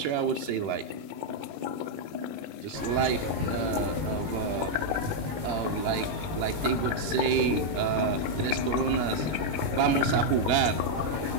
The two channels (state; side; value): late; left; 20 ms